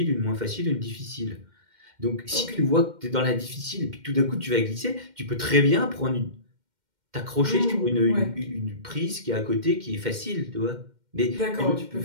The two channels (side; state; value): left; late; 2.1 ms